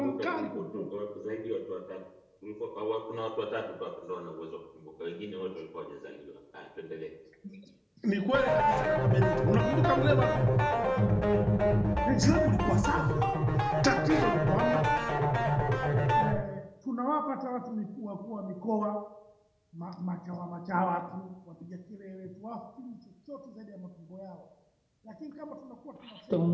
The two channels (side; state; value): both; identical; correlation 1.00